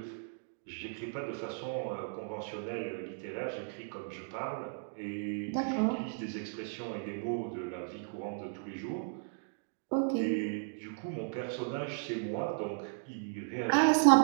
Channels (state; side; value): silent; left; digital silence